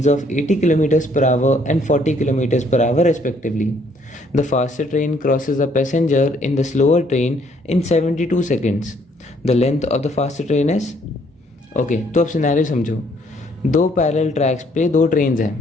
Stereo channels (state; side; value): normal; both; correlation 0.65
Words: of 80 kilometers per hour and 40 kilometers per hour respectively. The faster train crosses a passenger in the slower train in 72 seconds. The length of the faster train is okay तो अब scenario समझो। दो parallel tracks पे दो trains